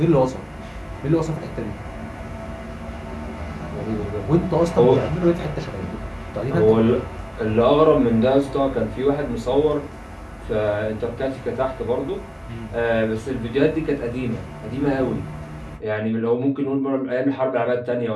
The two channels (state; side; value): identical; both; correlation 1.00